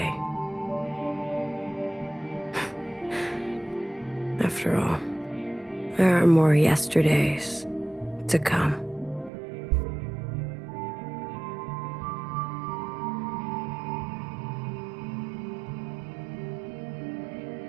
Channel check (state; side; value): drops out; left; at 9.3 s